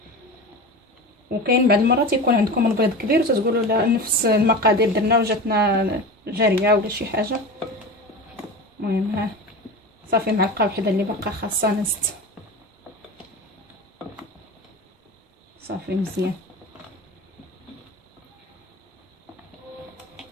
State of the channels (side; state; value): both; normal; correlation 0.29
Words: وكاين بعض المرات يكون عندكم البيض كبير وتتقولوا لا نفس المقادير درنا وجاتنا جاريه ولا شي حاجه. المهم ها صافي معلقه وحده اللي باقا خاصها نزت صافي مزيان.